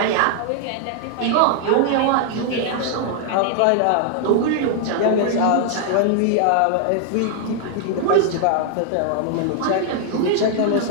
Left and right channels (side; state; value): both; different; correlation 0.00